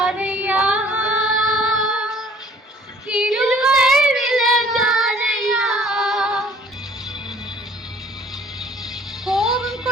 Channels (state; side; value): normal; both; correlation 0.55